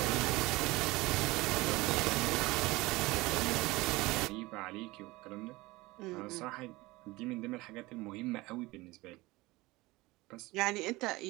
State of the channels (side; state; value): left; quieter; 21.0 dB